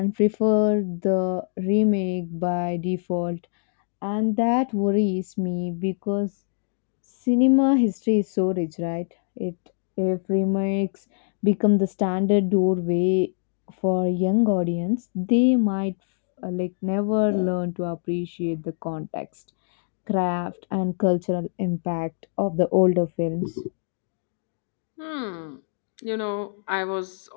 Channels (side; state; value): right; silent; digital silence